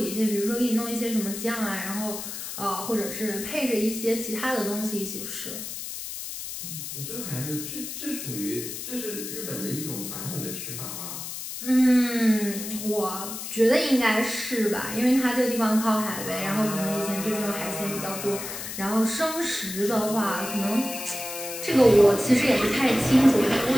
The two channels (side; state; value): left; noise; hiss, 7 dB below the sound